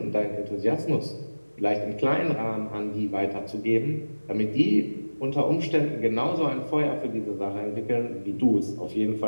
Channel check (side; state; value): both; inverted; correlation -1.00